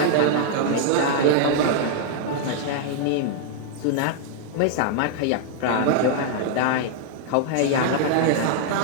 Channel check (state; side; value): different; both; correlation -0.01